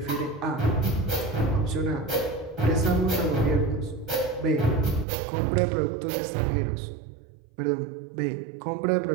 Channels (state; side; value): drops out; left; at 5.1 s